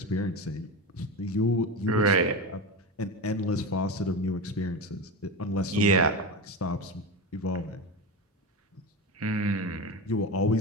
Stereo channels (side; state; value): both; normal; correlation 0.21